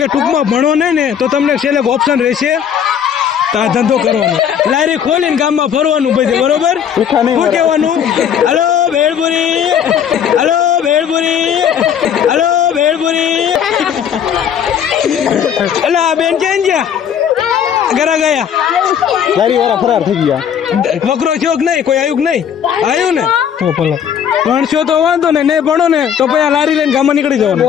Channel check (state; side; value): quieter; right; 8.5 dB